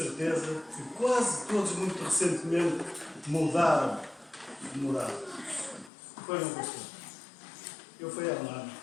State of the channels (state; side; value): drops out; right; at 5.9 s